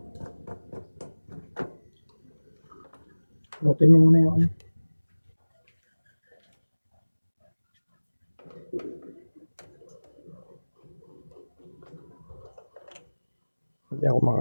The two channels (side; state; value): both; inverted; correlation -1.00